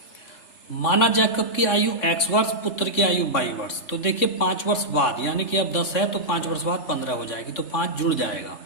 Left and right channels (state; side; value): late; right; 3.6 ms